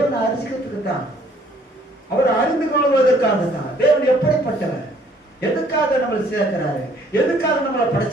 அறிஞ்சிக்கிறதுக்கு தான், அவரை அறிந்து கொள்வதற்காக தான். தேவன் எப்படிப்பட்டவர்? எதுக்காக நம்மளை சேர்க்கிறாரு? எதுக்காக நம்மளை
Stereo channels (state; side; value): normal; both; correlation 0.61